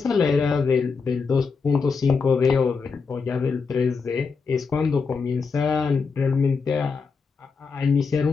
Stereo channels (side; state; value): right; quieter; 5.1 dB